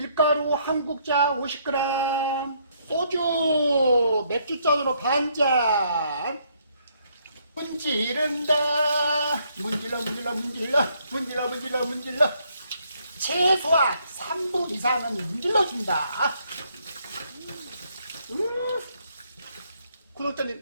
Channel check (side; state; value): both; inverted; correlation -0.70